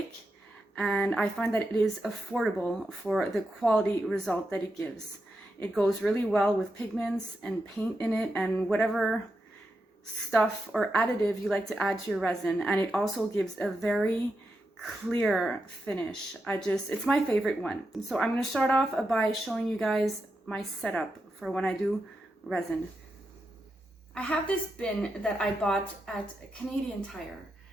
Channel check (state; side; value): normal; both; correlation 0.86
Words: and I find that it is affordable for the quality result that it gives. It goes really well with pigments and paint in it and whatever stuff or additive you like to add to your resin, and it also gives a very clear finish. It's my favorite one. So I'm going to start off by showing you guys my setup for when I do resin. I have this bin that I bought at Canadian Tire.